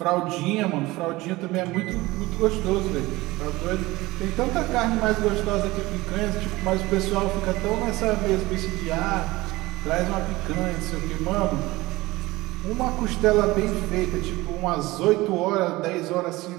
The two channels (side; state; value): left; quieter; 20.0 dB